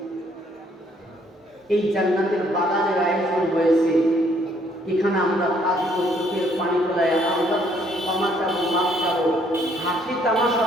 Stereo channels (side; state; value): both; normal; correlation 0.66